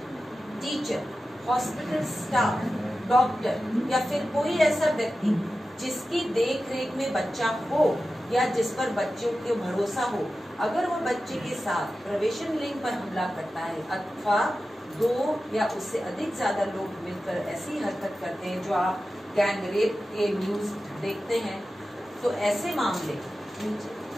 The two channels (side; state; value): both; normal; correlation 0.93